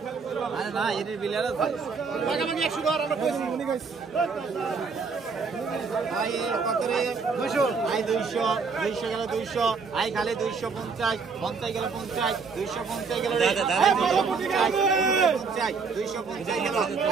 আরে না এর বিল আছে টাকা বাকি 100 ধর আমরা কইছি উনি কইছি আই কত রে 200 আই 200 200 গেল 200 আই খালি 250 50 গেল 50 250 গেল রে 250 গেল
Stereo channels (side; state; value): left; quieter; 5.0 dB